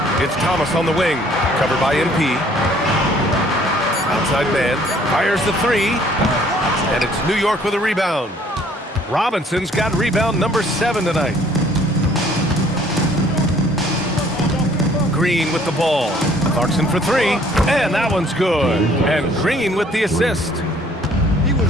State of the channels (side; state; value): both; normal; correlation 0.59